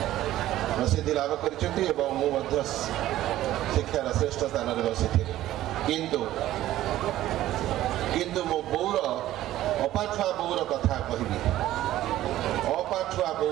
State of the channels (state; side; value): quieter; left; 14.2 dB